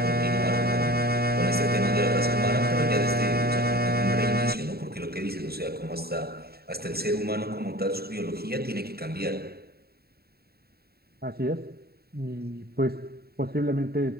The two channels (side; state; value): left; late; 0.45 ms